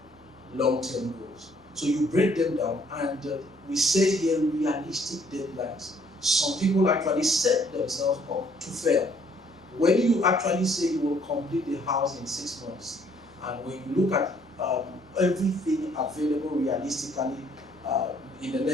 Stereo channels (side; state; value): both; normal; correlation 0.63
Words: long-term goals. So you break them down, and we set here realistic deadlines. Some people actually set themselves up to fail. When you actually say you will complete the house in 6 months, and when you look at everything available realistically in the